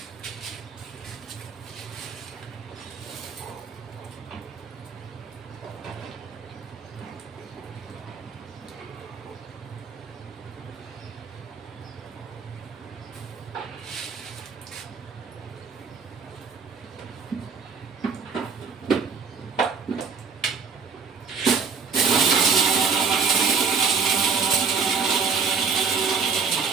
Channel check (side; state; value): left; quieter; 5.6 dB